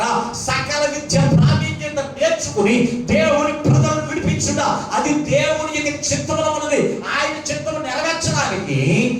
సకల విద్య ప్రావీణ్యత నేర్చుకుని దేవుని ప్రజలను విడిపించుట, అది దేవుని యొక్క చిత్తములో ఉన్నది. ఆయన చిత్తము నెరవేర్చడానికి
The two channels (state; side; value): identical; both; correlation 1.00